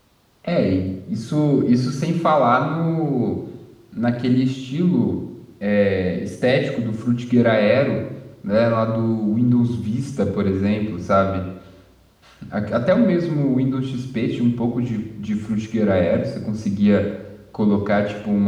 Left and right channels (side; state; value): both; identical; correlation 1.00